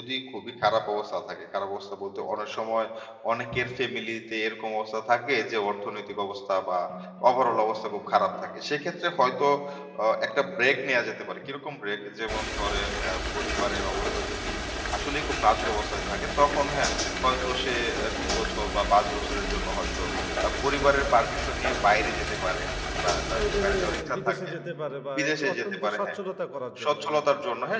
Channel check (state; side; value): identical; both; correlation 1.00